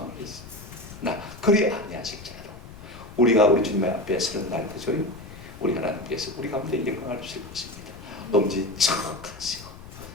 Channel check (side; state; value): left; noise; rumble, 16 dB below the sound